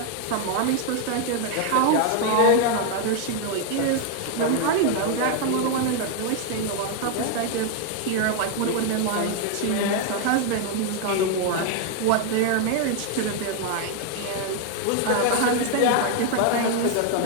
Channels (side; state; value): both; different; correlation 0.00